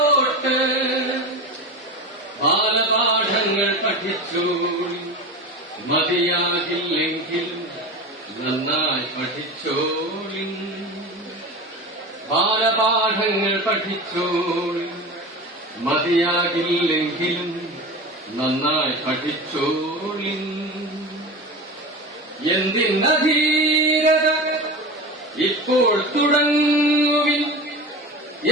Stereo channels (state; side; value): normal; both; correlation 0.29